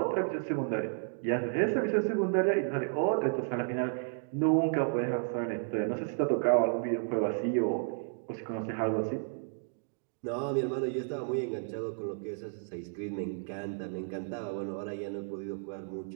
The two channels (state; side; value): silent; left; digital silence